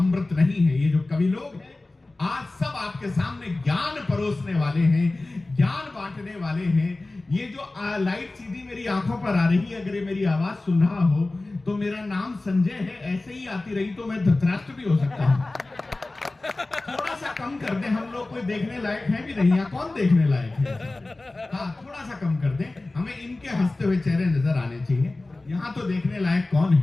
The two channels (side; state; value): right; quieter; 3.0 dB